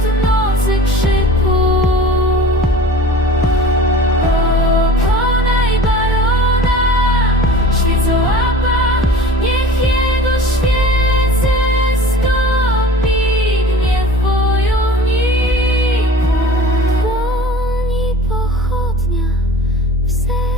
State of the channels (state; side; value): normal; both; correlation 0.42